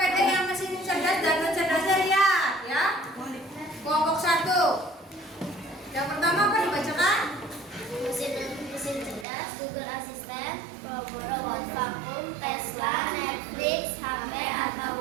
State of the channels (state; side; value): drops out; left; at 9.2 s